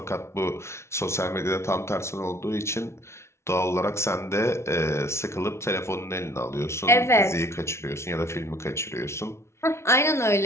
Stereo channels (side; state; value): right; late; 0.13 ms